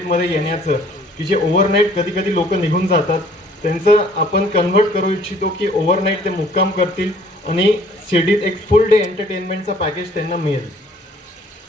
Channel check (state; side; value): normal; both; correlation 0.57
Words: येण्याचं, की जे ओव्हरनाईट कधी कधी लोक निघून जातात, त्यांचं आपण कन्व्हर्ट करू इच्छितो की ओव्हरनाईट ते मुक्काम करतील आणि शिर्डीत एक फुल डे एंटरटेनमेंटचा पॅकेज त्यांना मिळेल.